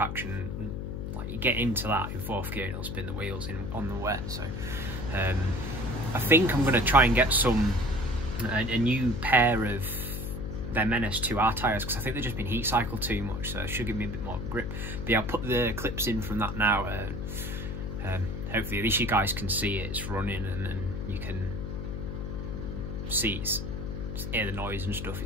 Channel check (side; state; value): left; noise; hum, 5 dB below the sound